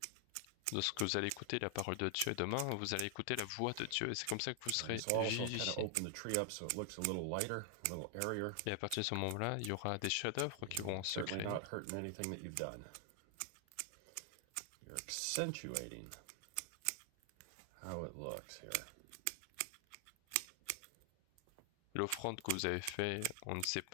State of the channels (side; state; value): both; different; correlation 0.00